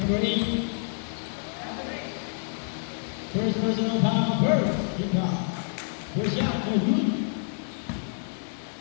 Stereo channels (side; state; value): right; silent; 59 dB below the other